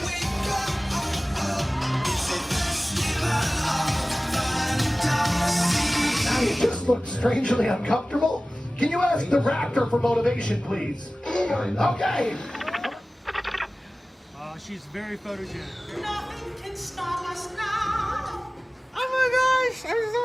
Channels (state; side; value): normal; both; correlation 0.97